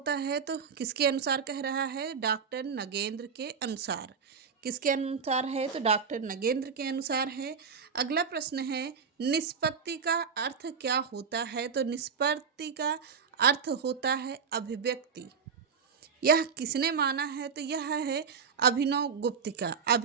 है? तो किसके अनुसार कह रहा है? डॉक्टर नगेंद्र के अनुसार। किसके अनुसार है? तो डॉक्टर नगेंद्र के अनुसार है। अगला प्रश्न है निष्पत्ति का अर्थ क्या होता है? तो निष्पत्ति का अर्थ होता है अभिव्यक्ति। यह किसने माना है? तो यह है अभिनव गुप्त का।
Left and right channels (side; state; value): left; quieter; 6.1 dB